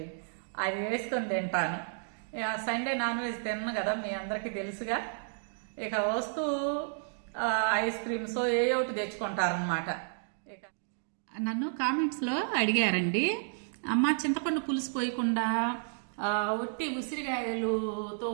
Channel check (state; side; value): silent; left; digital silence